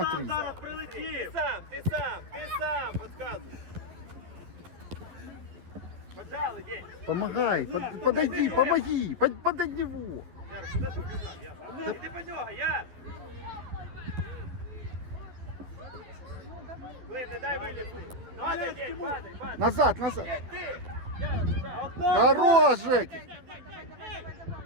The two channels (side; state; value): left; late; 11 ms